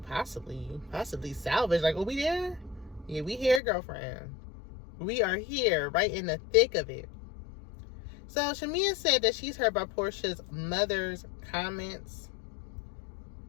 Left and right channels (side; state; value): right; drops out; at 3.6 s